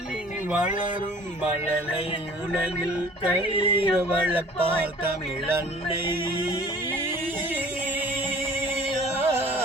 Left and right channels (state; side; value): normal; both; correlation 0.50